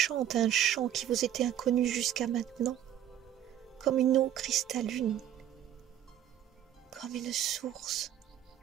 un chant qui vous était inconnu jusqu'à maintenant, comme une eau cristalline, comme une source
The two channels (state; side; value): quieter; left; 11.0 dB